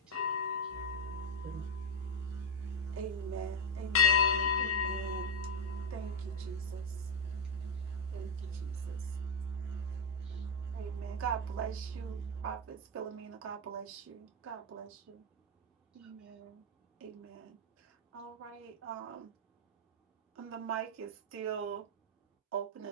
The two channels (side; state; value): both; normal; correlation 0.01